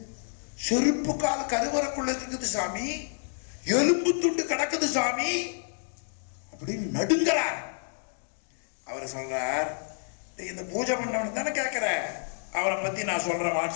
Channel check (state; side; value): silent; right; digital silence